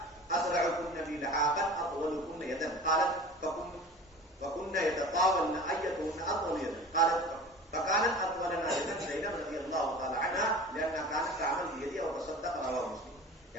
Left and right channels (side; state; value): both; normal; correlation 0.39